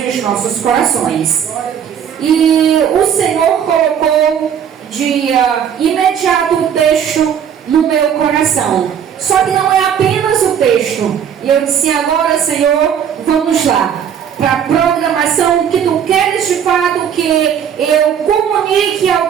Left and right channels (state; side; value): quieter; left; 8.5 dB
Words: aos nossos corações. E o Senhor colocou de imediato o texto no meu coração. Só que não é apenas o texto. E eu disse: agora, Senhor, vamos lá para a programação que tu queres de fato que eu comunique ao